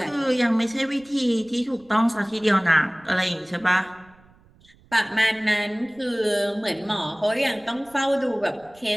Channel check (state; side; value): noise; right; rumble, 29 dB below the sound